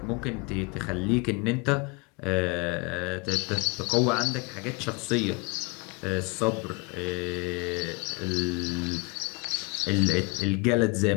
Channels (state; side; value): quieter; right; 30.1 dB